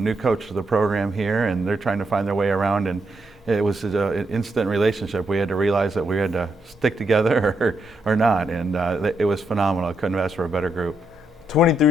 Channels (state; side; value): normal; both; correlation 0.80